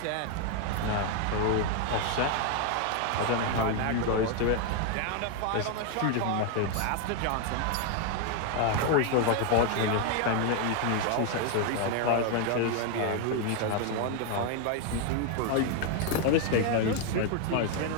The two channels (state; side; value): different; both; correlation 0.01